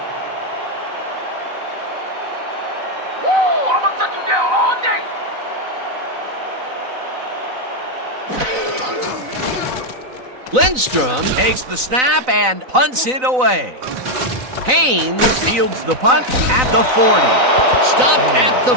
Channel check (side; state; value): left; late; 3.9 ms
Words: Woo! I'm gonna shut you down all day! Lindstrom takes the snap and punts it away. Haynes fields the punt at the 40. Stopped at the